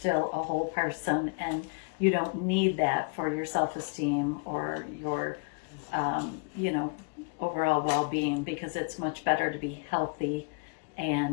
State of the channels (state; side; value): quieter; right; 37.1 dB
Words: a whole person, and you don't need that for your self-esteem or your overall well-being, because it's much better to be healthy